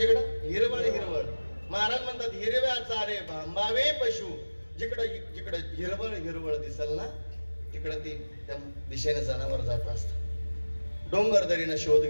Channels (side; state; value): both; inverted; correlation -1.00